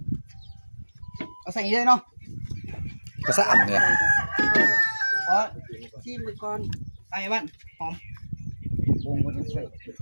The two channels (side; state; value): both; inverted; correlation -1.00